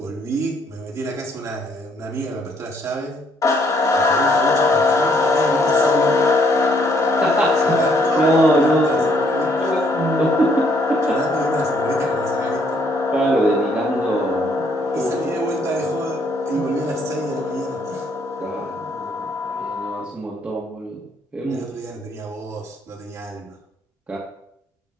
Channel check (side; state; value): both; normal; correlation 0.68